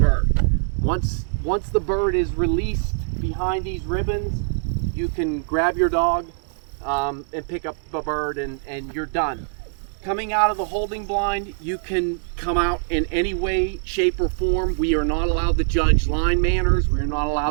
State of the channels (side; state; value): left; silent; 62 dB below the other